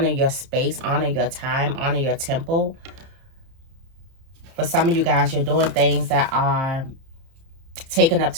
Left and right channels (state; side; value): late; left; 30 ms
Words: your space, honor your time, honor your temple. For some of you guys, you're doing things that are taking up